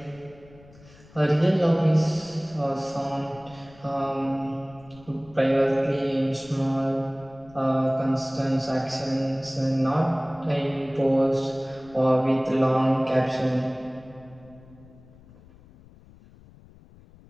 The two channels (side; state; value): left; noise; rumble, 24 dB below the sound